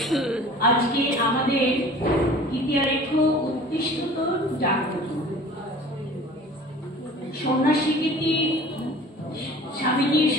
আজকে আমাদের ইতিহারেখ উৎকৃষ্টতর জাগ্রত সন্ন্যাসী গীতি, স্বামীজির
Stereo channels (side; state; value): both; normal; correlation 0.44